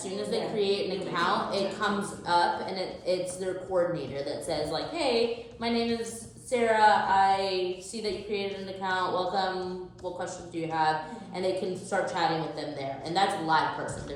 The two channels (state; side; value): identical; both; correlation 1.00